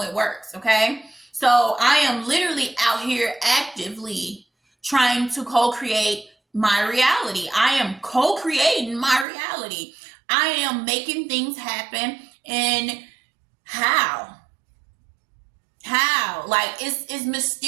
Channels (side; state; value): left; drops out; at 9.2 s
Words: it works, okay? So I am literally out here actively trying to co-create my reality. I am co-creating my reality. I am making things happen. And how? Like it's